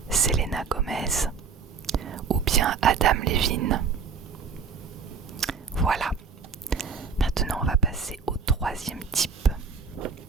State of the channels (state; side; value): quieter; left; 5.7 dB